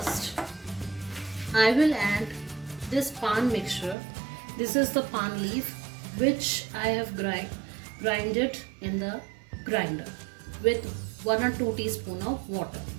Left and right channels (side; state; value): left; drops out; at 4.0 s